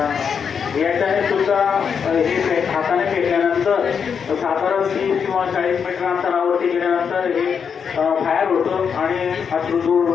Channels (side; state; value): right; quieter; 6.7 dB